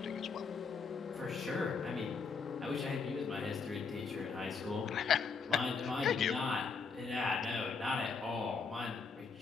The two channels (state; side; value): quieter; right; 5.2 dB